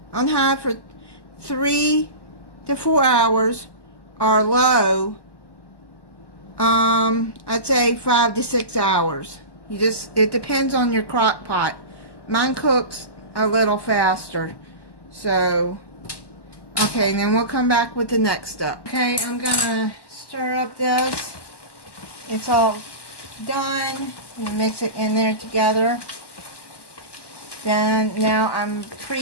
on high for 3 to 4 hours, or low, I'd say 5 to 6 hours. It depends on your crock pot. Mine cooks a little faster. So, okay, then we'll come back with the next step. Okay, I'm gonna stir up this. It's all done. And mix it in there together. Then now I'm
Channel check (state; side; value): late; right; 1.1 ms